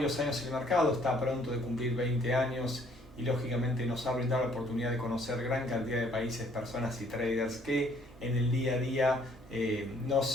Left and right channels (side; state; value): both; normal; correlation 0.62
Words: años en el mercado, está pronto de cumplir 20 años y lógicamente nos ha brindado la oportunidad de conocer gran cantidad de países, personas y traders que en el día a día